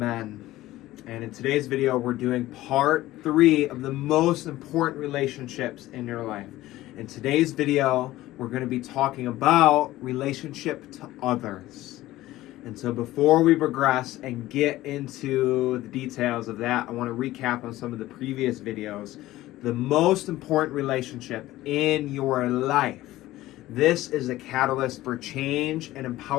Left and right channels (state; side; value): quieter; right; 16.3 dB